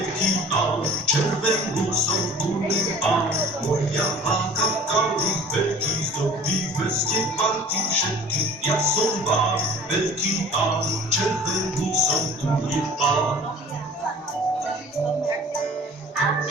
pán, červenú som gumný pán. Moja hláka kalich veľký zdobí veste parky všetky. Ja som pán, veľký pán, červenú som gumný pán. A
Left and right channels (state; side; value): normal; both; correlation 0.46